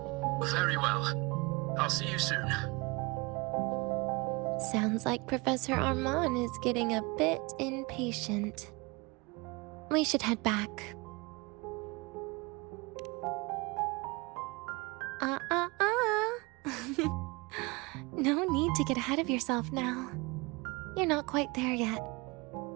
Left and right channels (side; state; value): left; quieter; 26.1 dB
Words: Very well. I'll see you soon. Sounds like Professor Armand is getting a bit impatient. We should head back. No need to get ahead of yourself now. You're not quite there yet.